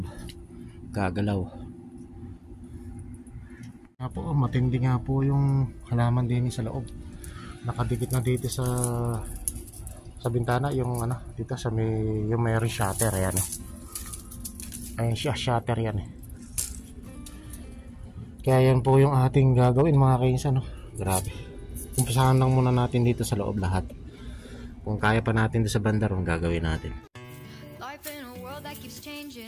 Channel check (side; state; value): both; identical; correlation 1.00